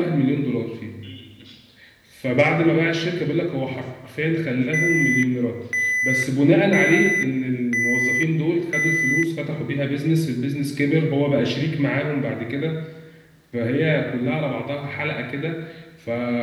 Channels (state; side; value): identical; both; correlation 1.00